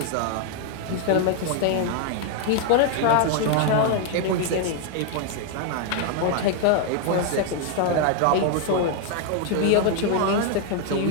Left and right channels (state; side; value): different; both; correlation 0.00